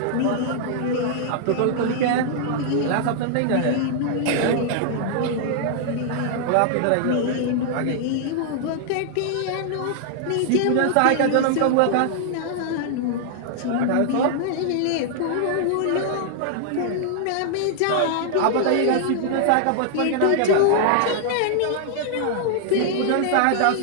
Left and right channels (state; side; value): different; both; correlation -0.01